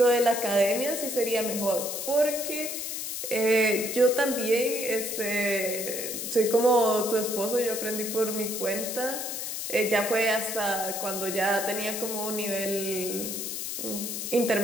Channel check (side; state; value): left; noise; hiss, 4 dB below the sound